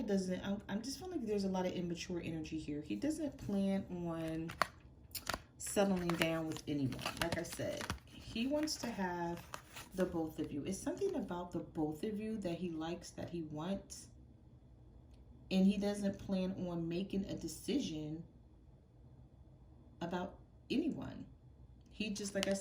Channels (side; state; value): both; identical; correlation 1.00